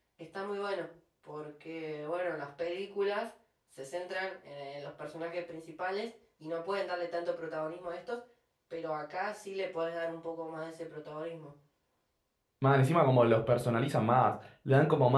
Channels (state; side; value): identical; both; correlation 1.00